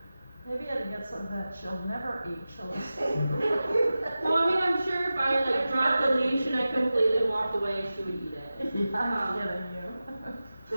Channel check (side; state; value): both; inverted; correlation -0.95